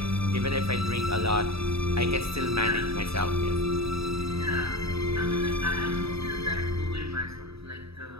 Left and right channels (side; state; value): left; late; 0.78 ms